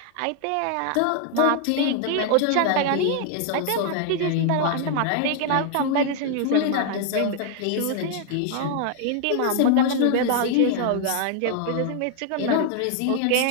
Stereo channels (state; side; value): different; both; correlation 0.00